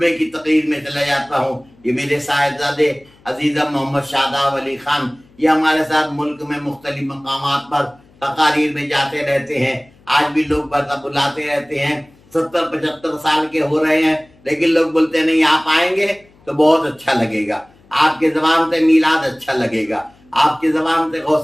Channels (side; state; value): left; noise; hum, 29 dB below the sound